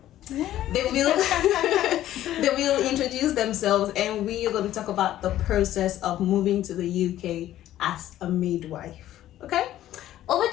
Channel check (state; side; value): quieter; right; 13.1 dB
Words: They will they will introduce themselves, and we are going to talk about the process of moving to the UK as a midwife. Okay, over